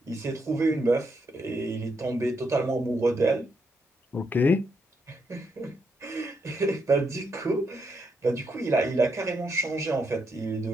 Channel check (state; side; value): normal; both; correlation 0.79